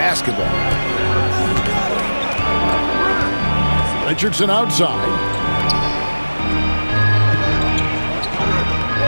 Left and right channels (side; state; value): both; inverted; correlation -1.00